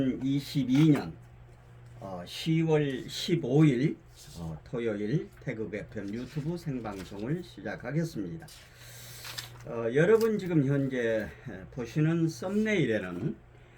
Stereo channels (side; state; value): both; identical; correlation 1.00